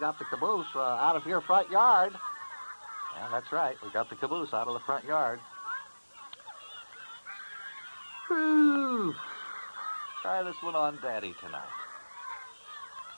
the caboose out of your front yard. Yeah, that's right. We got the caboose out of the front yard. Whew. Try this one on Daddy tonight.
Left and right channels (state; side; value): inverted; both; correlation -1.00